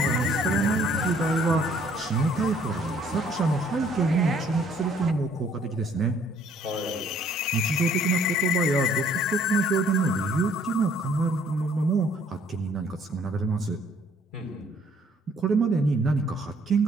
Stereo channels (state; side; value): normal; both; correlation 0.61